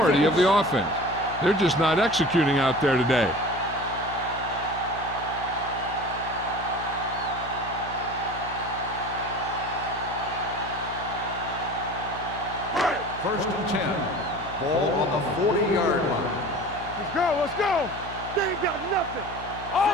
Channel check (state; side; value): noise; left; hum, 13 dB below the sound